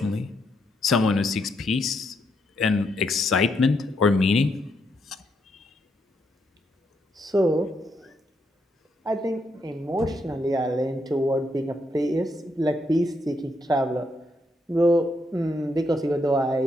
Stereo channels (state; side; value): normal; both; correlation 0.78